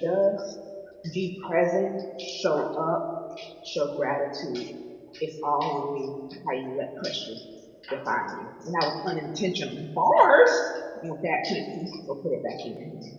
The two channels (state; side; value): identical; both; correlation 1.00